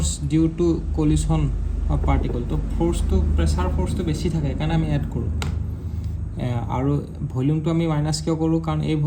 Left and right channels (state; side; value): identical; both; correlation 1.00